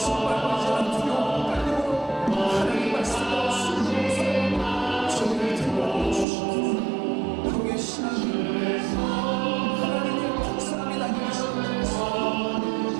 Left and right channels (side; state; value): left; drops out; at 6.2 s